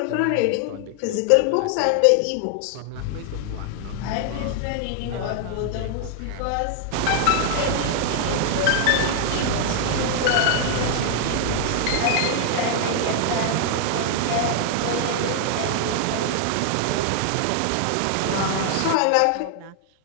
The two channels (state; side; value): different; both; correlation 0.00